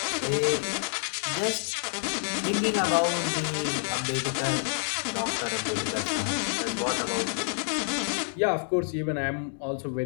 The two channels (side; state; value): right; silent; digital silence